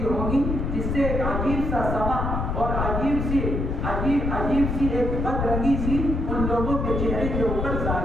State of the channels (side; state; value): left; noise; rumble, 1 dB below the sound